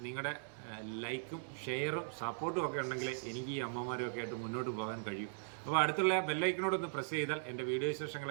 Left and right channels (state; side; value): silent; left; digital silence